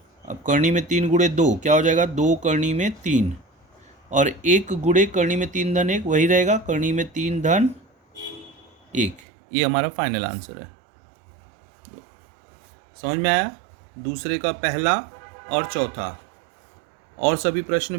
अब करनी में 3 गुणे 2 क्या हो जाएगा, 2 करनी में 3, और 1 गुणे करनी में 3 धन 1 वही रहेगा, करनी में 3 धन 1। ये हमारा फाइनल आंसर है। समझ में आया, दूसरे का पहला और चौथा। और सभी प्रश्न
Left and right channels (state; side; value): drops out; left; at 9.2 s